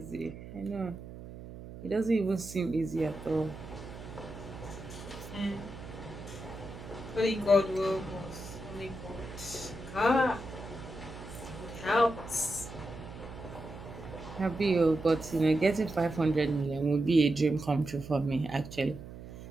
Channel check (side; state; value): right; noise; hum, 13 dB below the sound